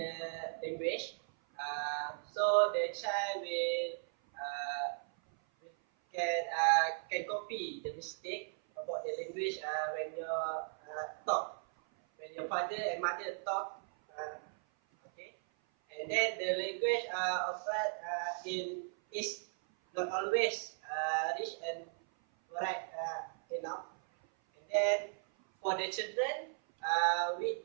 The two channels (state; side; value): silent; left; 53 dB below the other